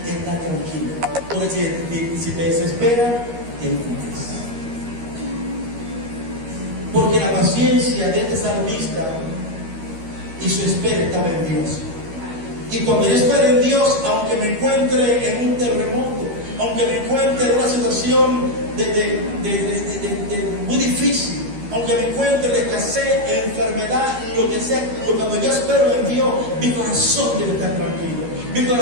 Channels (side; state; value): left; late; 13 ms